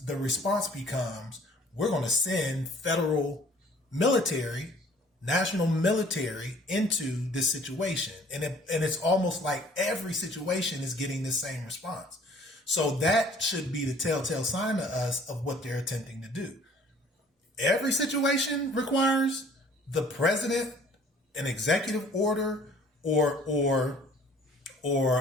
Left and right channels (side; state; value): both; normal; correlation 0.54